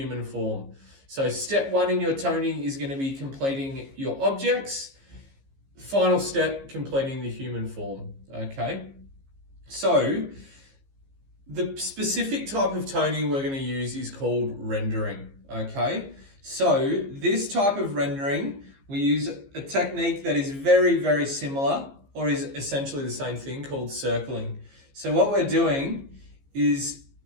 form. So step one in your toning is going to be completing your objects. Final step, completing the human form. Okay. So the specific type of toning we're going to use is called rendering. Okay. So this type of rendering, we use a technique that is very, very similar, or is essentially the same thing, called circling. So what we're doing is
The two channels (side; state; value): left; late; 15 ms